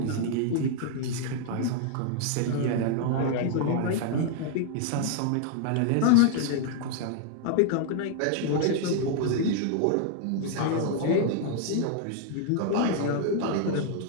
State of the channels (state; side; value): different; both; correlation 0.00